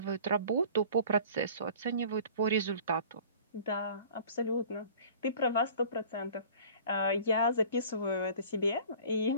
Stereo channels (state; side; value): inverted; both; correlation -0.46